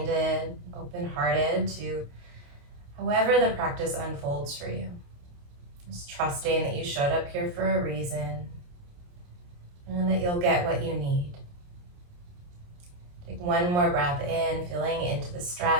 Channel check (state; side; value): late; left; 28 ms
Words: open-hearted to however the practice unfolds for you. Just trusting that you showed up here for a reason and that you'll get what you need. Take one more breath in, feeling into the